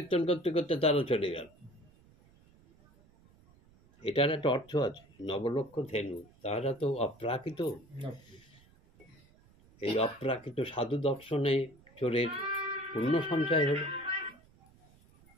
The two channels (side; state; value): right; noise; rumble, 28 dB below the sound